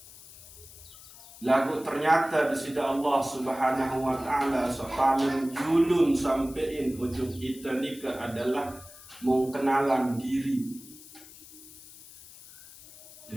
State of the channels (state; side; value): noise; left; hiss, 19 dB below the sound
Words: Lagu ternyata disida Allah Subhanahu wa taala paling julun sampein ujub kita nikah adalah mengkenalan diri.